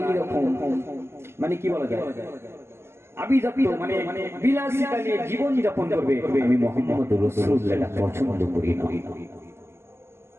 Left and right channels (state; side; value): late; left; 0.12 ms